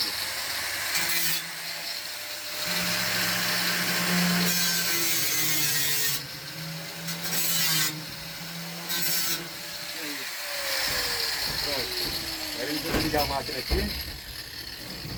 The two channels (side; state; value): both; identical; correlation 1.00